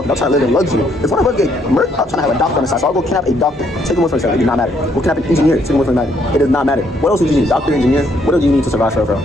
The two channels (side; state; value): both; normal; correlation 0.70